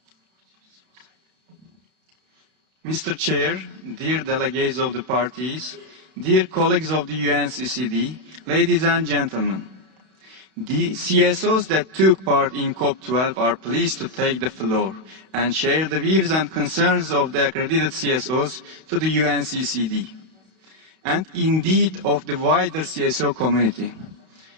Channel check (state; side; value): late; left; 32 ms